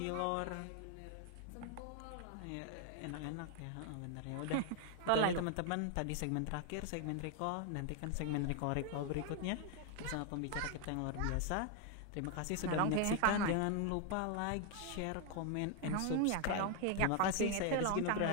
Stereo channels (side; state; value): both; different; correlation 0.00